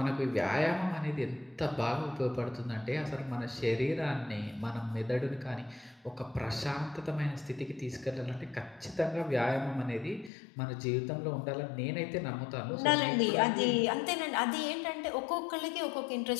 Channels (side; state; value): right; drops out; at 10.3 s